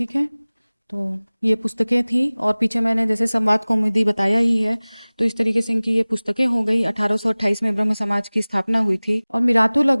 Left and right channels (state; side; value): inverted; both; correlation -1.00